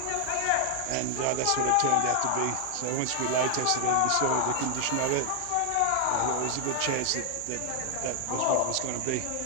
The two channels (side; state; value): both; different; correlation 0.00